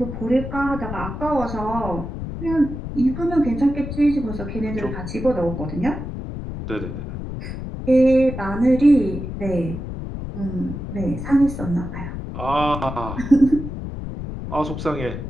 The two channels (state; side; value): noise; left; rumble, 7 dB below the sound